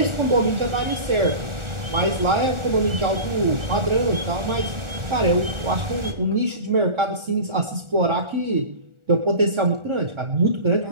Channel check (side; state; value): left; late; 1.4 ms